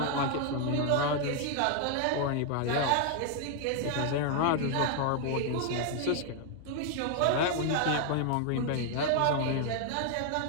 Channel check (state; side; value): different; both; correlation 0.00